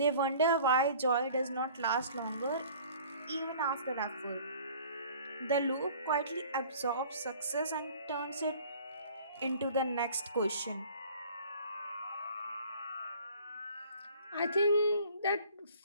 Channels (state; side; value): inverted; both; correlation -0.50